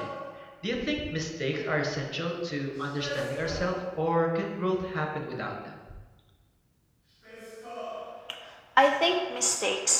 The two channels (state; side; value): identical; both; correlation 1.00